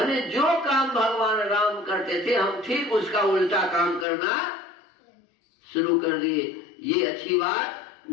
जो काम भगवान राम करते थे हम ठीक उसका उल्टा काम करना शुरू कर दिए। ये अच्छी बात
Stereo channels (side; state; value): right; drops out; at 4.0 s